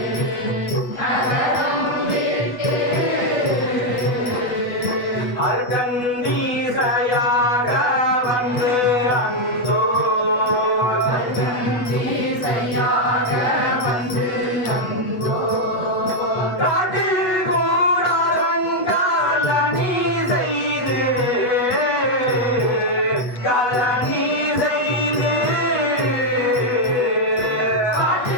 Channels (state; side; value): late; right; 8.2 ms